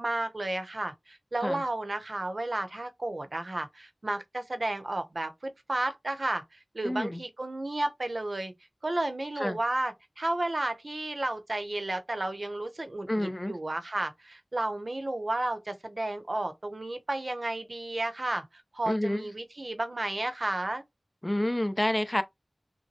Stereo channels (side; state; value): both; normal; correlation 0.98